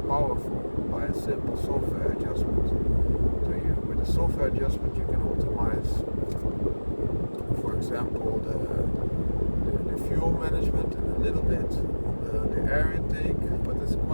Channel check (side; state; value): both; inverted; correlation -1.00